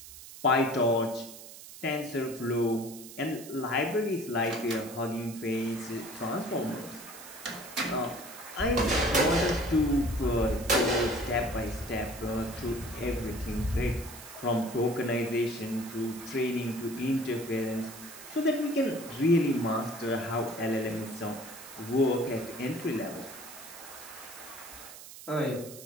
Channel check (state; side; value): noise; right; hiss, 15 dB below the sound